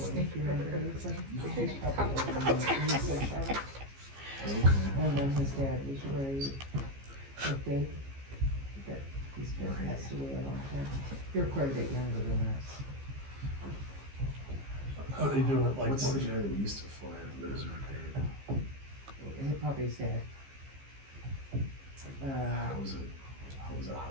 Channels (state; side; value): late; left; 15 ms